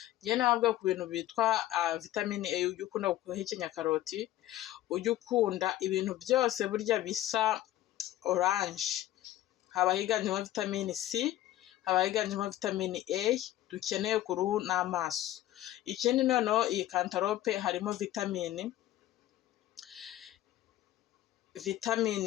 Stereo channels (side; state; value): right; quieter; 14.2 dB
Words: Njye nababwiye ku bintu bitwa vitamine A, ujya ukunda guhekenya karoti, ujya ukunda ibintu byose burya bisa oranje, haba higanjemo vitamine C, haba higanjemo vitamine A dukeneye ku ruhu n'amaso. Ikindi noneho iyi cantaloupe harimo vitamine